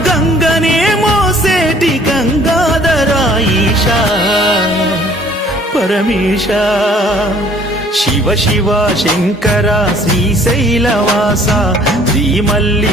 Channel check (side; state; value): both; normal; correlation 0.56